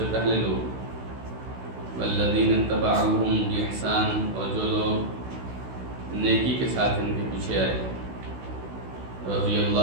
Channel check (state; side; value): late; left; 16 ms